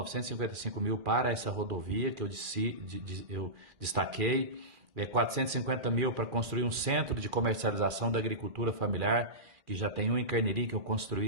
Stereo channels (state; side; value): late; left; 2.4 ms